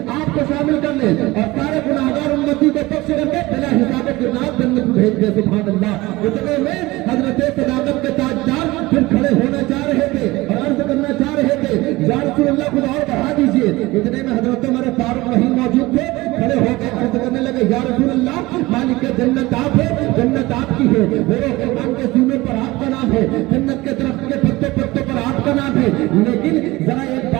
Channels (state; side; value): quieter; left; 20.2 dB